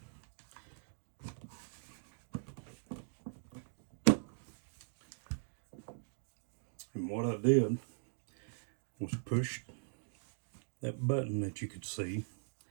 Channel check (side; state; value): left; silent; digital silence